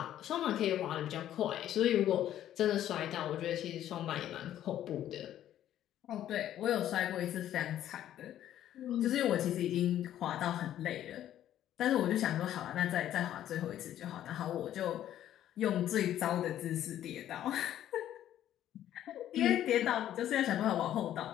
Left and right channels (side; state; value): right; quieter; 11.8 dB